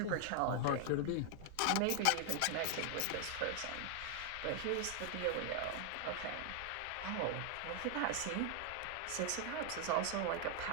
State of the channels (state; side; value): different; both; correlation 0.00